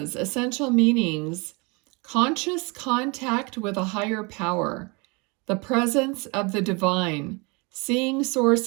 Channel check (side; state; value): left; quieter; 29.1 dB